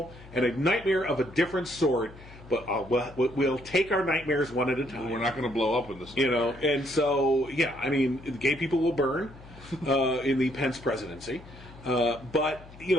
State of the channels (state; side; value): noise; left; hum, 19 dB below the sound